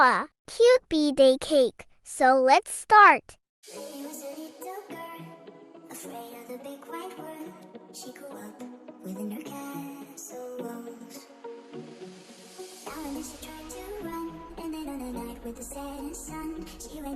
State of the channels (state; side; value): identical; both; correlation 1.00